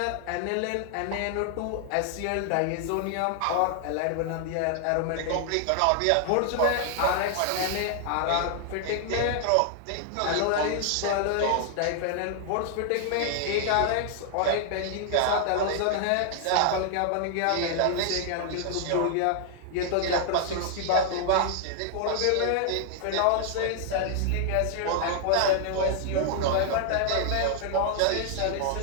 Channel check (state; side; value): different; both; correlation 0.00